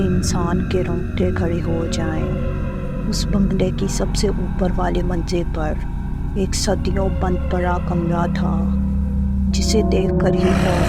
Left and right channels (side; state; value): both; identical; correlation 1.00